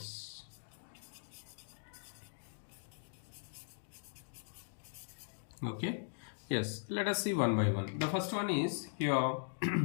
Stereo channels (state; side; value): silent; right; digital silence